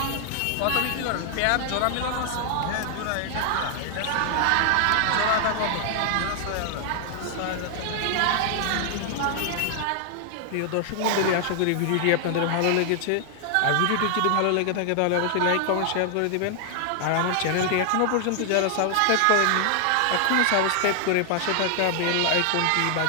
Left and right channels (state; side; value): different; both; correlation 0.00